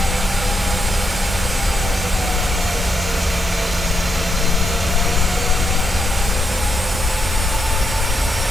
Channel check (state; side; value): normal; both; correlation 0.81